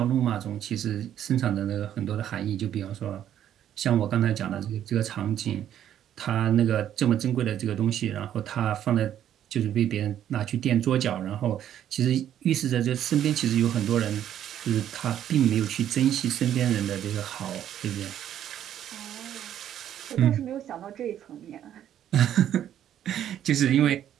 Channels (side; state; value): left; quieter; 10.7 dB